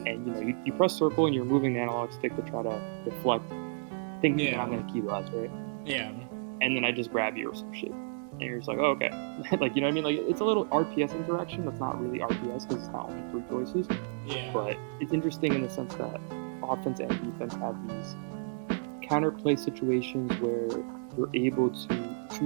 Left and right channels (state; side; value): silent; left; 57 dB below the other